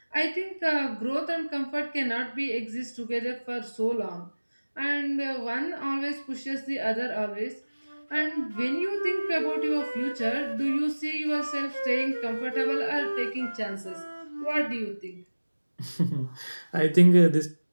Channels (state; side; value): inverted; both; correlation -1.00